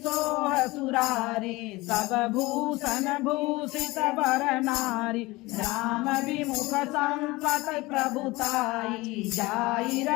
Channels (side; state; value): right; quieter; 21.5 dB